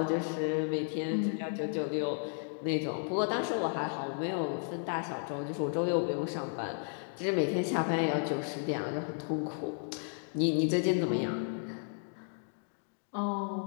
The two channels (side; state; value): right; silent; 55 dB below the other